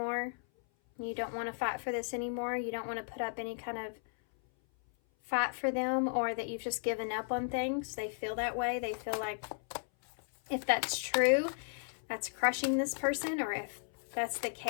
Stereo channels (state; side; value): silent; right; 54 dB below the other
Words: You don't want to fight for this anymore. You don't want to put up any kind of fight for them, or that you've just given up on things. They feel that way. They feel like if that's true, that's crushing this person, or if that's the